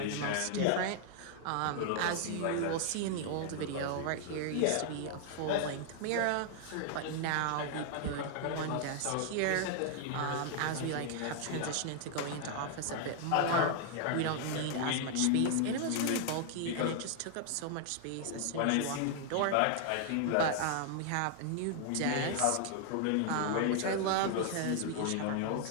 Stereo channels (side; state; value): both; different; correlation 0.00